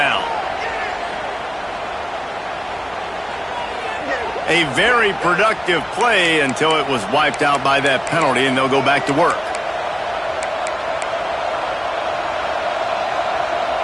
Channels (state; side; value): identical; both; correlation 1.00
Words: A very productive play until it was wiped out by that penalty, and they'll go back to work.